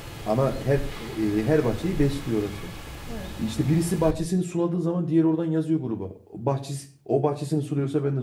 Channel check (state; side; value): identical; both; correlation 1.00